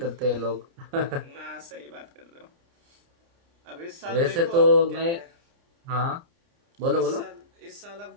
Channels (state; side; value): late; left; 29 ms